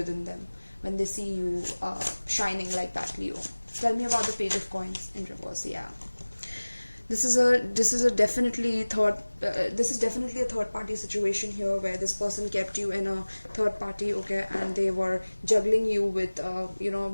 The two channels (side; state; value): both; inverted; correlation -1.00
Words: them when they see you shining like that, Leo. Tell me about the Page of Coins in reverse. Yeah, This is a definitely third this is definitely a third party situation here, where this person kept you in a third party, okay, and they were juggling you with